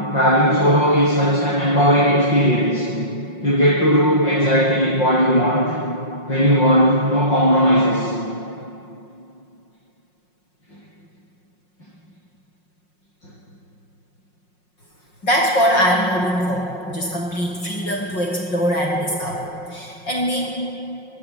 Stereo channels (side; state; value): right; late; 5.5 ms